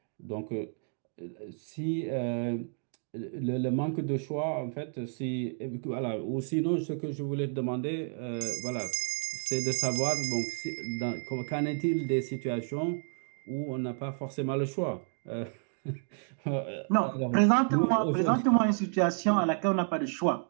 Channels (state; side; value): silent; left; 57 dB below the other